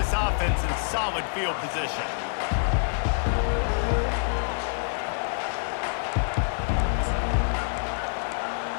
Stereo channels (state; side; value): silent; right; digital silence